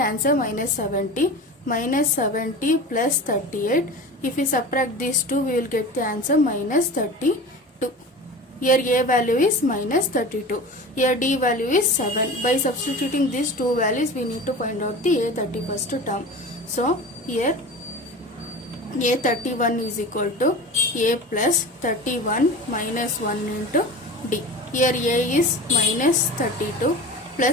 minus 70. Minus 70 plus 38. If we subtract these two, we will get the answer minus 32. Here A value is minus 32. Here D value is 7. By substituting these two values, we need to find out the A31st term. So here A31 is equal to A plus 31 minus 1 into D. Here A is minus 32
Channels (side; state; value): both; normal; correlation 0.33